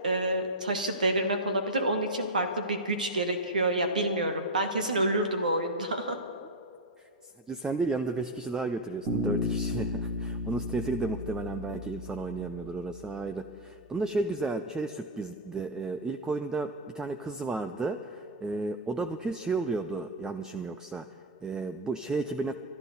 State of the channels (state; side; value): normal; both; correlation -0.01